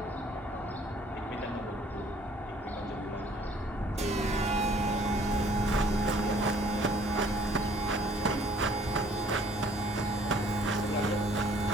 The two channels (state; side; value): normal; both; correlation 0.58